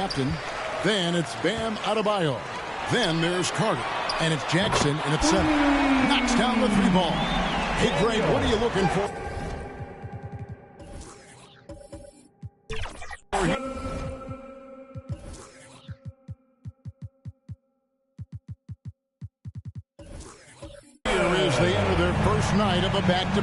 Then it's Bam Adebayo. Then there's Carter, and it's Jackson in at 7. Knocks down the 3 ball. Hey, Greg, what are you looking for? They enter their first night of a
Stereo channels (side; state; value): both; identical; correlation 1.00